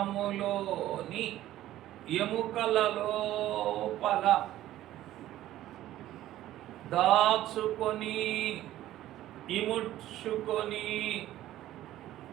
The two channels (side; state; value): left; quieter; 14.0 dB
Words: ఎముకల లోపల దాచుకొని ఇముడ్చుకొని